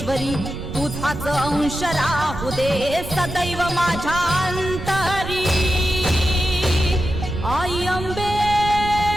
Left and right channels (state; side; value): noise; right; rumble, 9 dB below the sound